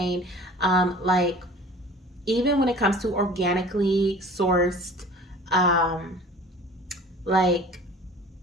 like even when it comes to organically sourced like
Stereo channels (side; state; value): both; normal; correlation 0.44